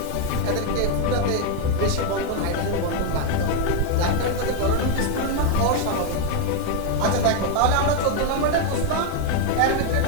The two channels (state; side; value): different; both; correlation 0.01